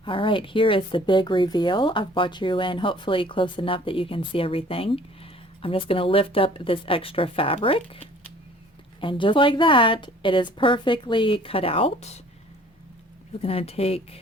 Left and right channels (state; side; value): normal; both; correlation 0.53